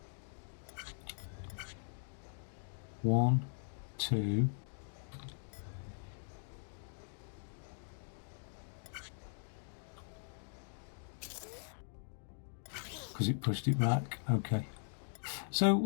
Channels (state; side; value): silent; right; digital silence